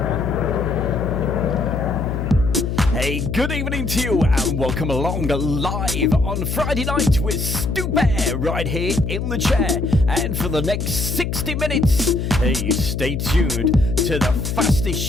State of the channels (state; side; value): noise; left; hum, 2 dB below the sound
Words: Good evening to you and welcome along live on Friday night with Stu Bear right here in the chair. And for the next 60 minutes, hey, stay tuned to the fastest